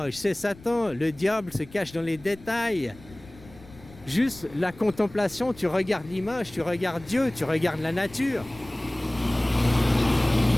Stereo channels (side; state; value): left; noise; rumble, 21 dB below the sound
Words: C'est Satan. Le diable se cache dans les détails. Juste la contemplation, tu regardes l'image, tu regardes Dieu, tu regardes la nature.